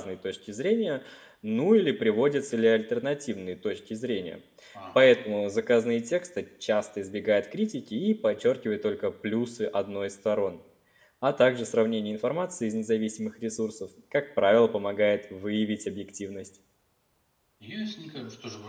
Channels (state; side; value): identical; both; correlation 1.00